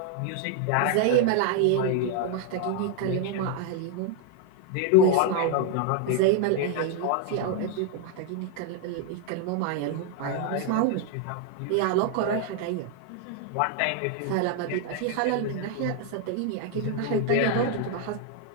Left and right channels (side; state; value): both; different; correlation 0.00